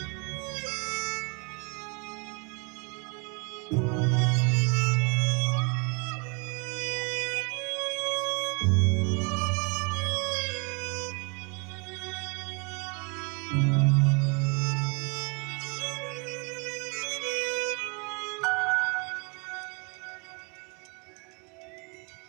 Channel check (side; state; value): left; quieter; 32.6 dB